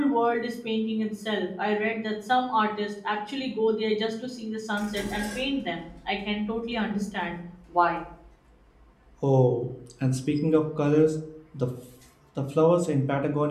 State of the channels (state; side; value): identical; both; correlation 1.00